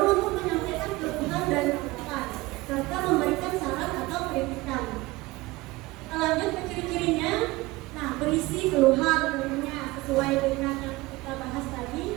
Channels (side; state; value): left; quieter; 20.7 dB